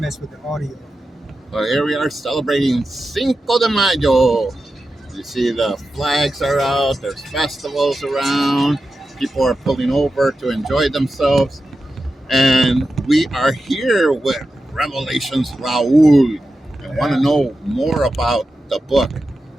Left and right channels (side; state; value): both; normal; correlation 0.91